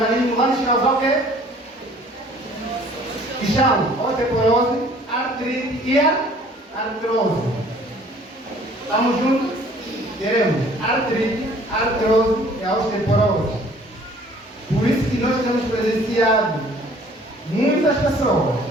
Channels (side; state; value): both; normal; correlation 0.54